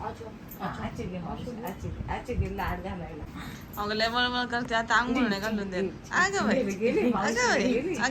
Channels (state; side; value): identical; both; correlation 1.00